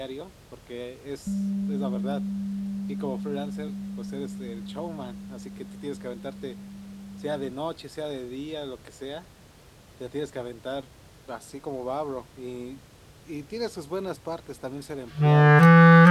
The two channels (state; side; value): identical; both; correlation 1.00